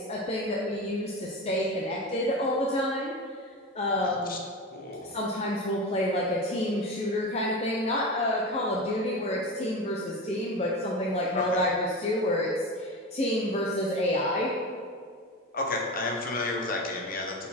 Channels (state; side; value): normal; both; correlation 0.25